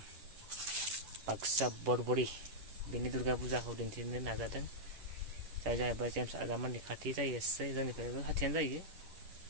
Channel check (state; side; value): late; left; 11 ms